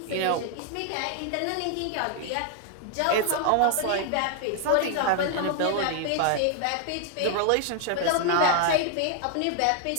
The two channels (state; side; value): different; both; correlation 0.00